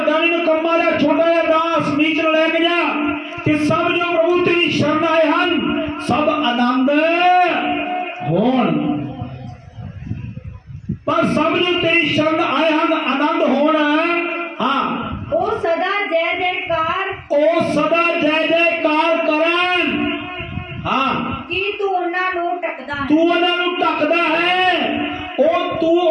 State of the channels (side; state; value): both; identical; correlation 1.00